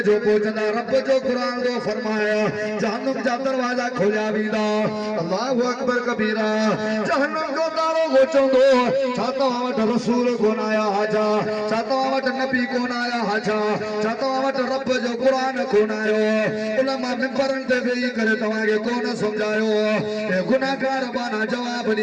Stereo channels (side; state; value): both; identical; correlation 1.00